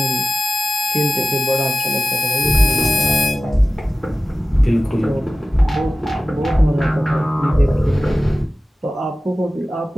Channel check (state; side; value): normal; both; correlation 0.94